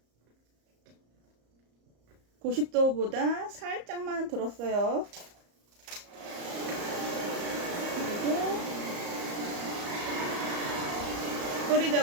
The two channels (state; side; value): late; left; 34 ms